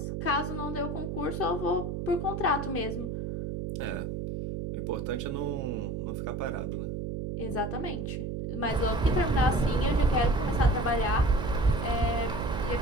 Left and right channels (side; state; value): right; noise; hum, 4 dB below the sound